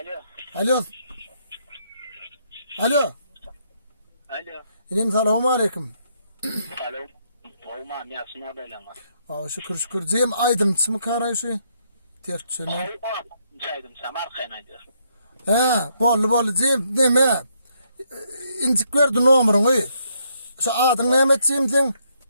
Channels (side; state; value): both; inverted; correlation -0.74